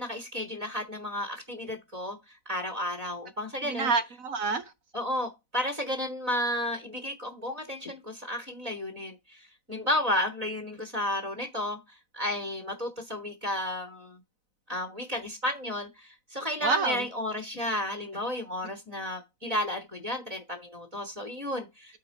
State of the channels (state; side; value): late; left; 4.0 ms